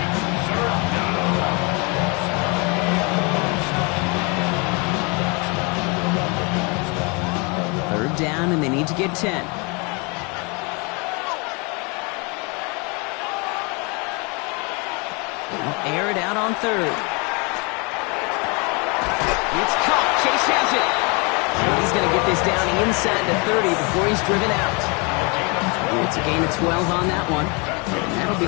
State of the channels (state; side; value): quieter; right; 31.0 dB